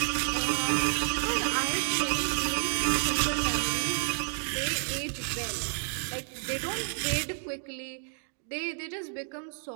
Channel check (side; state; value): left; silent; 58 dB below the other